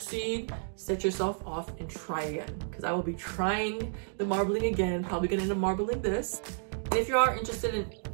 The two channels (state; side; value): silent; left; digital silence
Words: set yourself off and try again, because I will be trying the marbling again, probably gonna end up marbling this. And if you are interested in